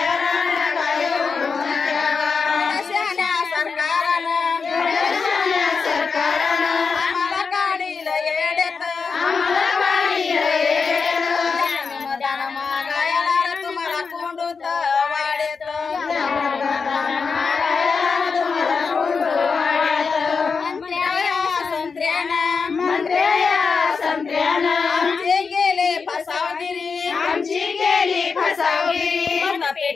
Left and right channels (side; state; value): right; quieter; 5.2 dB